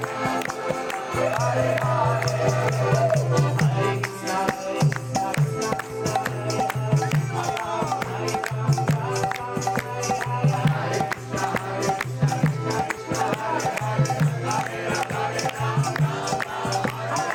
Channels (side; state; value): both; identical; correlation 1.00